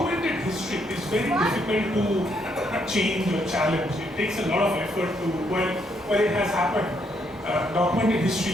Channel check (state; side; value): normal; both; correlation 0.74